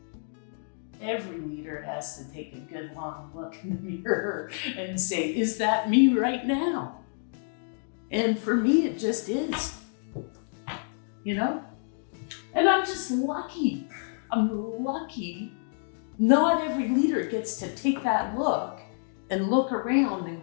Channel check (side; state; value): right; silent; digital silence